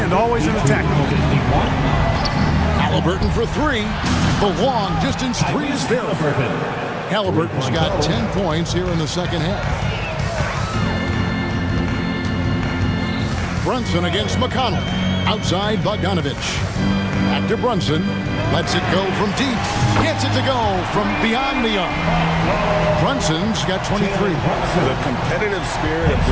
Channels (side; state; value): both; identical; correlation 1.00